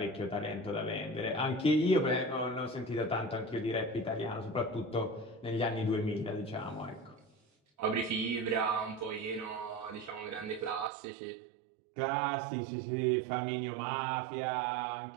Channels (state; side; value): drops out; left; at 10.9 s